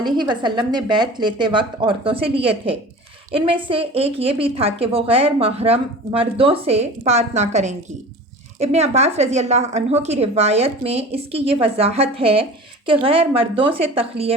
وسلم نے بیعت لیتے وقت عورتوں سے لیے تھے، ان میں سے ایک یہ بھی تھا کہ وہ غیر محرم مردوں سے بات نہ کریں گی۔ ابن عباس رضی اللہ عنہ کی روایت میں اس کی یہ وضاحت ہے کہ غیر مردوں سے تخلیے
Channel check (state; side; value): normal; both; correlation 0.38